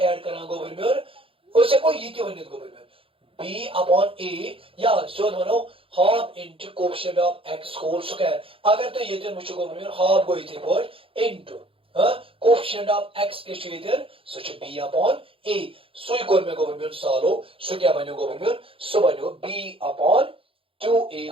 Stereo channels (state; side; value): late; left; 0.26 ms